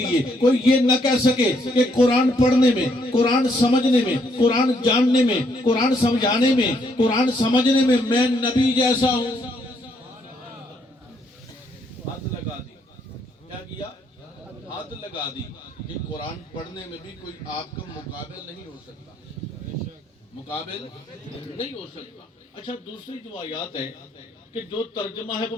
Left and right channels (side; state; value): both; normal; correlation 0.72